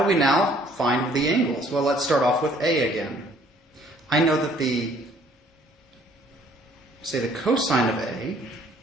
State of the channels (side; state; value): both; normal; correlation 0.60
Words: we now find the angles? Well, let's start off with A again. I know that the cosine of A,